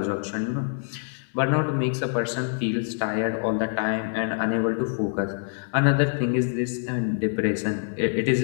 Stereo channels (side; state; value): right; silent; 61 dB below the other